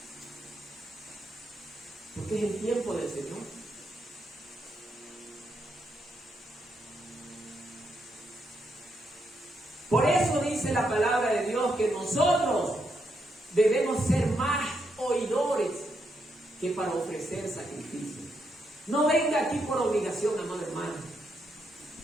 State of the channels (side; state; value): both; normal; correlation 0.80